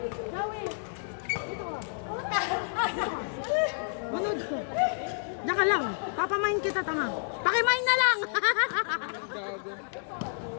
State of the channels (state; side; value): silent; right; digital silence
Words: Manood ko. Diyan ka lang. Papamain kita, tama. Pakimain na lang.